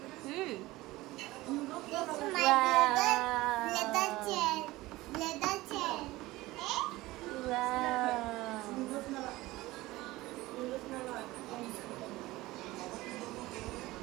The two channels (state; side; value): quieter; left; 18.9 dB